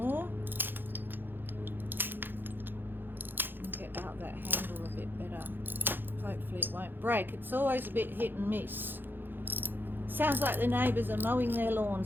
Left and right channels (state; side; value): late; left; 0.097 ms